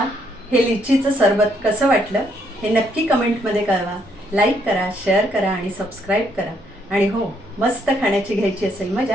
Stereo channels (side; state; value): both; normal; correlation 0.72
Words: हे लिचीचं सरबत कसं वाटलं हे नक्की कमेंटमध्ये कळवा। लाईक करा, शेअर करा आणि सबस्क्राईब करा। आणि हो, मस्त खाण्याची घ्यायची असेल